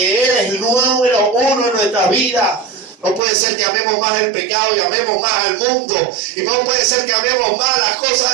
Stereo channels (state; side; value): drops out; left; at 3.2 s